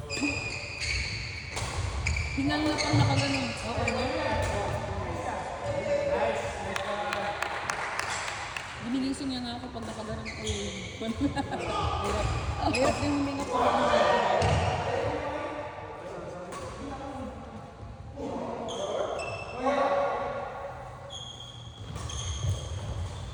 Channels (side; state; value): both; identical; correlation 1.00